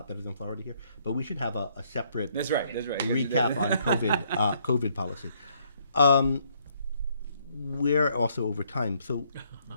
better than Florida here, but we should have a separate That's right. recap on COVID policy. We're also over time. So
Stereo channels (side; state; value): both; inverted; correlation -0.69